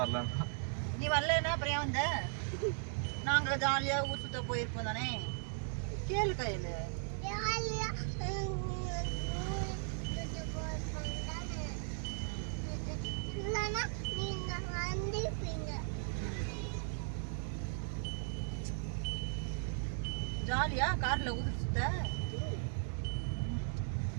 வரலண்ணா. நீ வரலன்னா அப்புறம் ஏன் வந்த? நாங்க ஜாலியா ஊர் சுத்த போயிருப்போம் தானே. கேளு கையில. ஜாலியா கார்ல ஊர் சுத்த,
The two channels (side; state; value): left; silent; 53 dB below the other